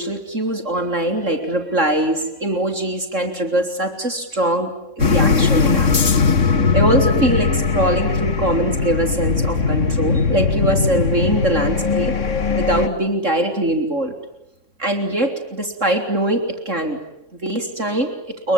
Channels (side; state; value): left; late; 3.6 ms